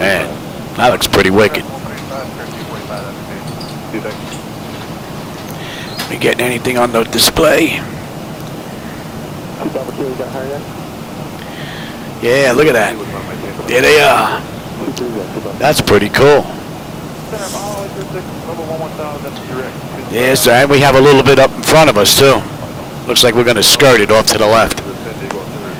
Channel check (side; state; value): both; identical; correlation 1.00